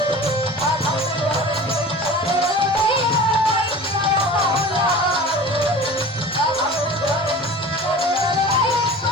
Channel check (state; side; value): normal; both; correlation 0.38